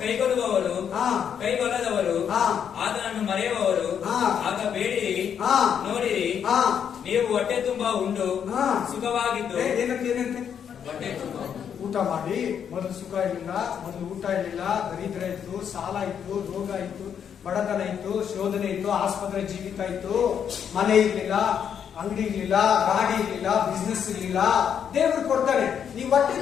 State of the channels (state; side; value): quieter; right; 8.1 dB